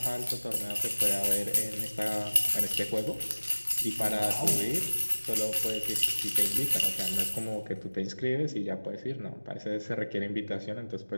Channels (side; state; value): both; inverted; correlation -1.00